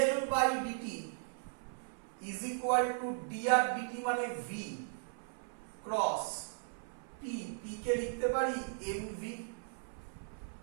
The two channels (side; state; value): left; silent; 53 dB below the other